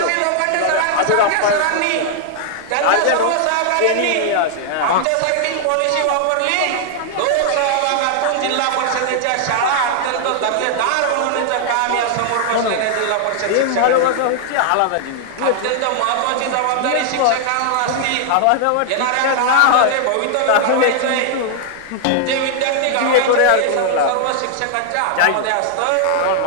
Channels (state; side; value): different; both; correlation 0.00